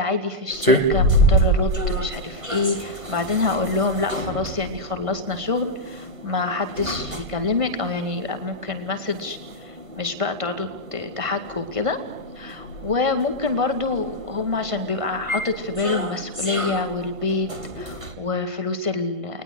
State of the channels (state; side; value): late; left; 1.5 ms